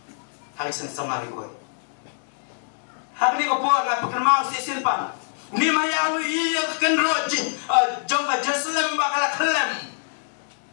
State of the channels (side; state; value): right; silent; digital silence